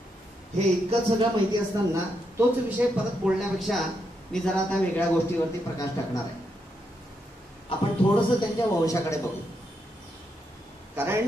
हे इतकं सगळं माहिती असताना तोच विषय परत बोलण्यापेक्षा मी जरा आता वेगळ्या गोष्टीवरती प्रकाश टाकणार आहे. आपण थोडंसं त्यांच्या वंशाकडे बघू,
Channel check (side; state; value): both; normal; correlation 0.80